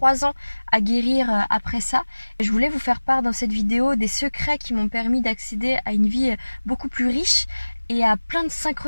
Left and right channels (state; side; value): inverted; both; correlation -1.00